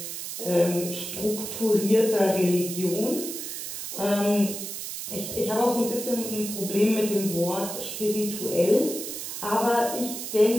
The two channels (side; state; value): right; noise; hiss, 7 dB below the sound